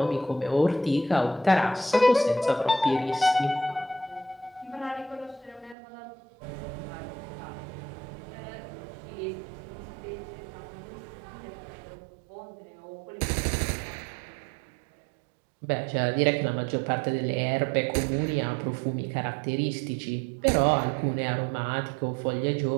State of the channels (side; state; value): left; drops out; at 5.8 s